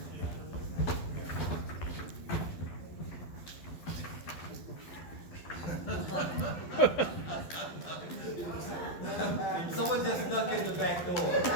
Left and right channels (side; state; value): right; late; 12 ms